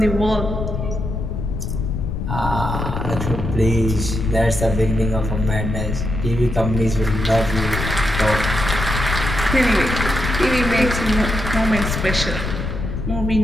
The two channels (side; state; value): left; noise; rumble, 3 dB below the sound